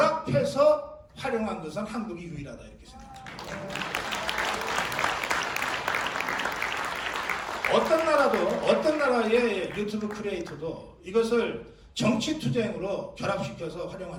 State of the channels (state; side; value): identical; both; correlation 1.00